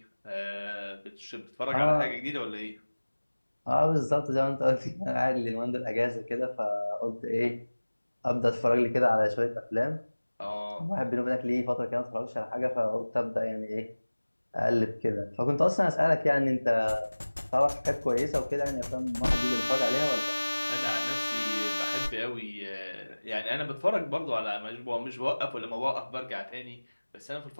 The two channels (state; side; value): inverted; both; correlation -1.00